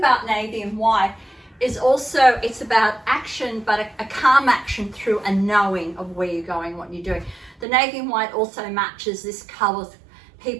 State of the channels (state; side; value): drops out; left; at 7.7 s